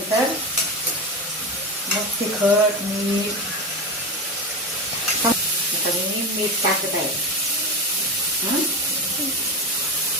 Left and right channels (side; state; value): both; normal; correlation 0.20